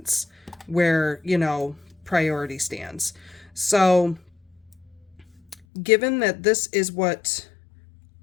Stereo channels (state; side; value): drops out; right; at 5.6 s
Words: where, priority stands. So given that this is what